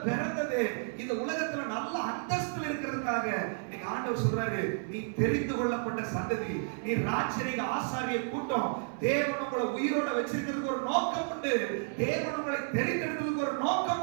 பிறந்தது இந்த உலகத்துல நல்ல அந்தஸ்துல இருக்கிறதுக்காக. நீங்க ஆண்டவர் சொல்றாரு, நீ தெரிந்து கொள்ளப்பட்ட சந்ததி, நீ ராஜரீக ஆசாரிய கூட்டம். தேவன் உங்களை உயிரோட வச்சிருக்கிறதுக்கு ஒரு நோக்கம் உண்டு. தேவன் உங்களை தெரிந்தெடுக்கிறதுக்கு ஒரு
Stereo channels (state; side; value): silent; left; 57 dB below the other